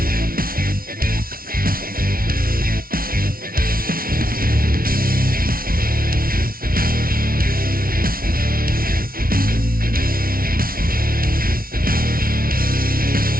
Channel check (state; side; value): late; left; 0.43 ms